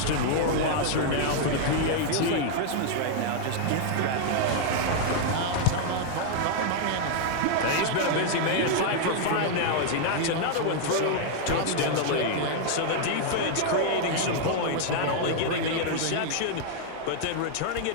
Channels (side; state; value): both; different; correlation 0.00